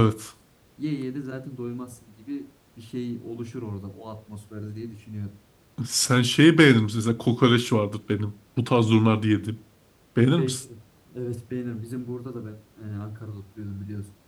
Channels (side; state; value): both; identical; correlation 1.00